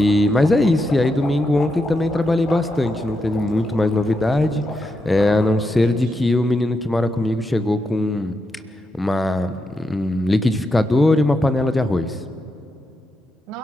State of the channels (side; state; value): both; normal; correlation 0.84